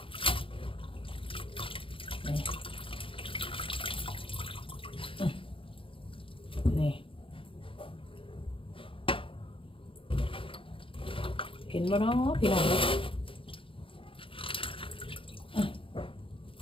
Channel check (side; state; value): right; late; 0.26 ms